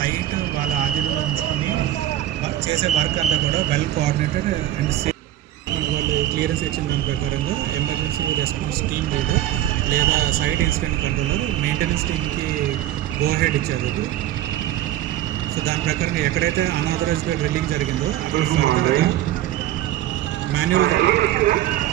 వాళ్ళ ఆధీనంలో ఉంచుకొని చేసే వర్క్ అంతా కూడా వెల్ కోఆర్డినేటెడ్ అండ్ సేఫ్. వాళ్ళు క్లియరెన్స్ ఇచ్చిన దాని ప్రకారంగా ఎమర్జెన్సీ రెస్పాన్స్ టీమ్ లీడర్ లేదా సైట్ ఇన్సిడెంట్ కంట్రోలర్ మెయింటెనెన్స్ టీమ్కి గో హెడ్ ఇచ్చారు. సో దాని ప్రకారంగా ఎక్కడైతే అన్ఆథరైజ్డ్గా డ్రిల్లింగ్ జరిగిందో అక్కడ మాన్యువల్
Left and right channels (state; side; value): quieter; left; 13.3 dB